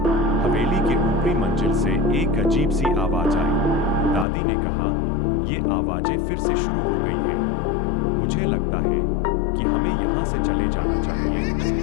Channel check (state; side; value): drops out; right; at 4.2 s